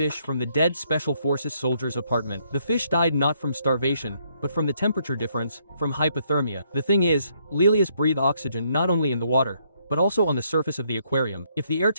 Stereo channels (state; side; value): inverted; both; correlation -0.71